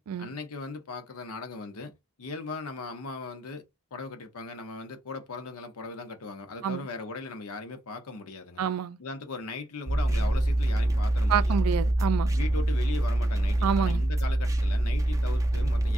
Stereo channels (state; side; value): normal; both; correlation 0.82